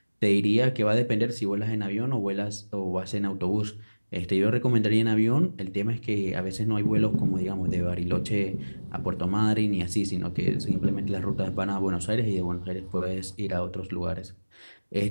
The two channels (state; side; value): inverted; both; correlation -1.00